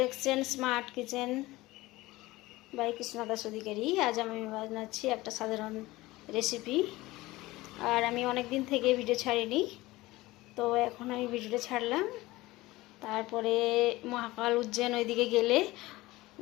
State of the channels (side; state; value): right; quieter; 19.3 dB